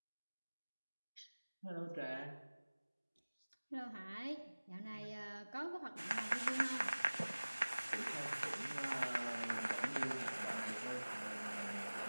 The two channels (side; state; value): both; inverted; correlation -1.00